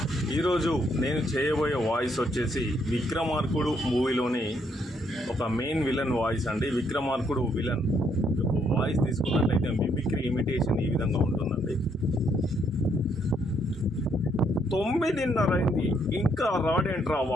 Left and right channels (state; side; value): normal; both; correlation 0.72